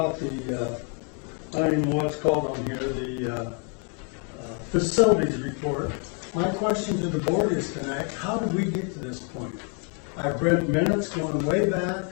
the, I don't even know what's called on here, the facilities report. My question to the board is tonight, how did we get to this point? I've read minutes going way back.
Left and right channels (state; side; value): quieter; right; 40.0 dB